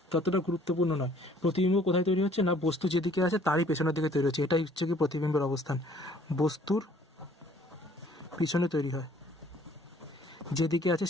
ততটা গুরুত্বপূর্ণ নয়। প্রতিবিম্ব কোথায় তৈরি হচ্ছে না, বস্তু যেদিকে আছে তারই পেছনের দিকে তৈরি হচ্ছে, এটাই হচ্ছে কি প্রতিবিম্বের অবস্থান। বস্তুর পিছনে তৈরি হয়, যেদিকে আছে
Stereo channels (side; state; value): both; normal; correlation 0.58